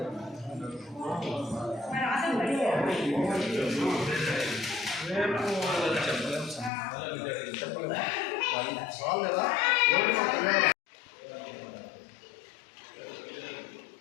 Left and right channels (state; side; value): drops out; right; at 6.7 s